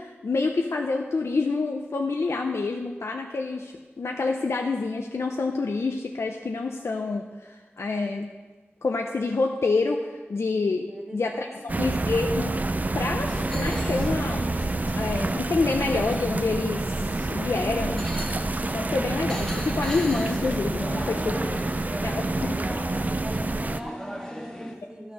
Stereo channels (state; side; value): normal; both; correlation 0.86